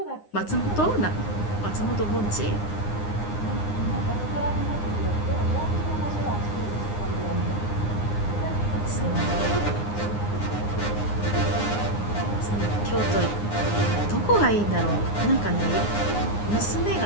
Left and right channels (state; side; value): late; right; 9.7 ms